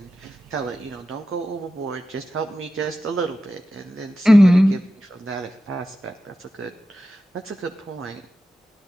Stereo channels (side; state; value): both; normal; correlation 0.92